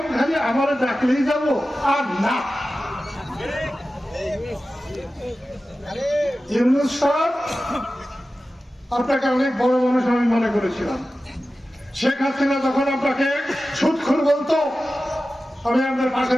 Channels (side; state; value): both; normal; correlation 0.94